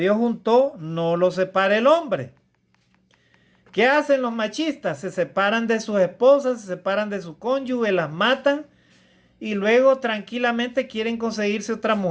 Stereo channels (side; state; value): both; identical; correlation 1.00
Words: juntó, no lo separe el hombre. ¿Qué hacen los machistas? Se separan de sus esposas, se separan de su cónyuge, las matan y luego tranquilamente quieren conseguirse otra